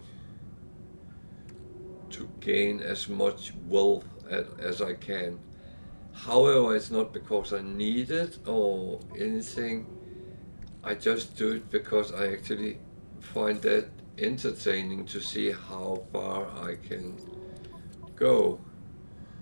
to gain as much wealth as I can. However, it's not because I need it or anything. I just do it because I actually find that entertaining to see how far I can go.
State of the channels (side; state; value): both; inverted; correlation -1.00